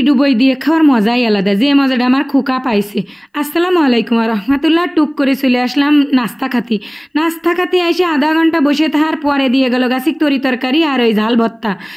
ডুবই দিয়ে খাওয়ার মজাই আলাদা, যে মজাটা আমার খোকা পাইছে। আসসালামু আলাইকুম রহমতুল্লাহ। টুক করে চলে আসলাম নাস্তা খাতি এসে আধা ঘন্টা বসে থাকার পরে দিয়ে গেল গাছিক তরি তরকারি আর ওই ঝাল ভর্তা।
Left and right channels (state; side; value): identical; both; correlation 1.00